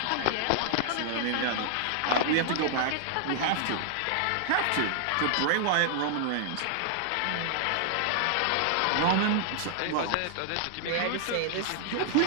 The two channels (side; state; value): both; different; correlation 0.00